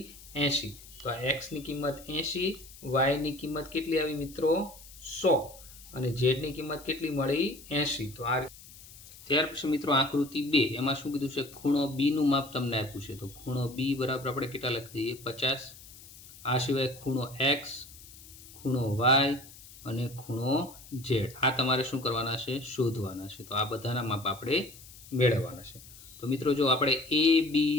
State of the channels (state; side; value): noise; left; hiss, 19 dB below the sound